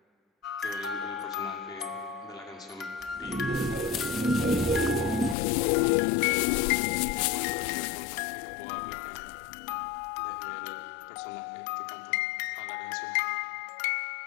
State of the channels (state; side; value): drops out; right; at 5.4 s